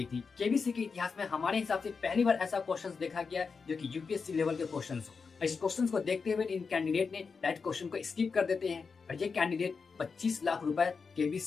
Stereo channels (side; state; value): right; quieter; 5.1 dB